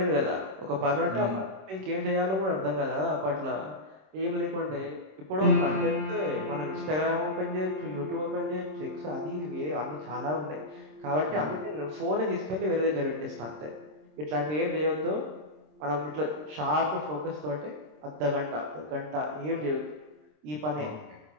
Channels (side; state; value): left; late; 26 ms